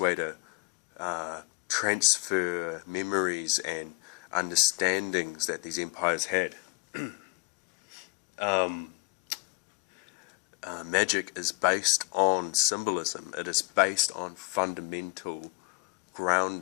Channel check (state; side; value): quieter; right; 31.2 dB